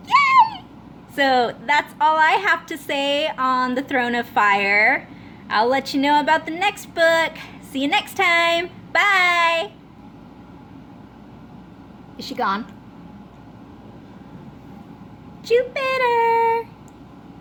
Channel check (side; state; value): both; identical; correlation 1.00